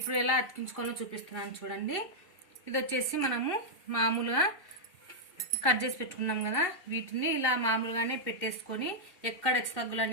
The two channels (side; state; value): right; late; 2.7 ms